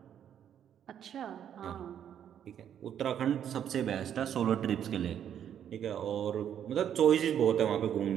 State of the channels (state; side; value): quieter; left; 9.5 dB